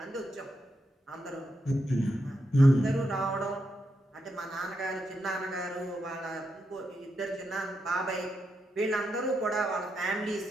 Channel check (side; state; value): both; normal; correlation 0.83